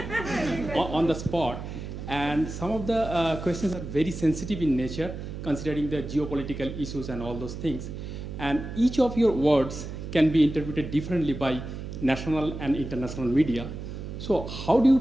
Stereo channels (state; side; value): noise; right; hum, 8 dB below the sound